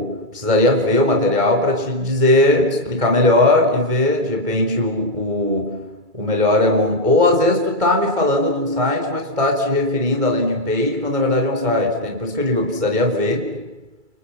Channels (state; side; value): late; left; 2.3 ms